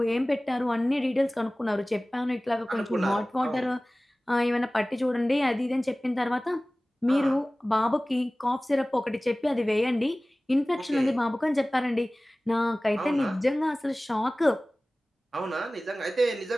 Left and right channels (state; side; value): normal; both; correlation 0.98